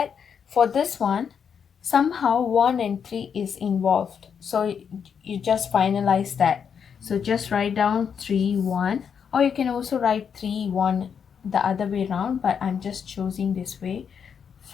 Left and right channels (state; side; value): quieter; right; 7.1 dB